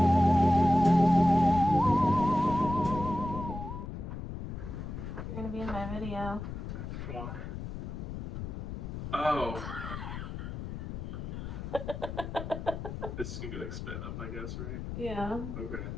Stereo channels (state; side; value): noise; left; rumble, 7 dB below the sound